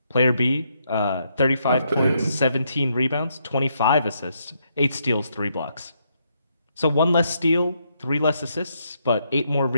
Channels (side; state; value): both; inverted; correlation -0.76